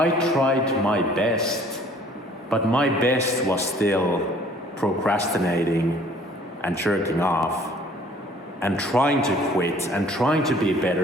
tried my best, but my best was still procrastinating and jerking off and trying to quit and trying to be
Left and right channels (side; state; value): both; normal; correlation 0.55